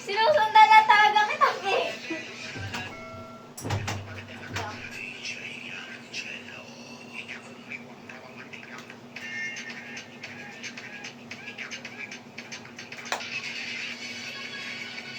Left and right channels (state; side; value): identical; both; correlation 1.00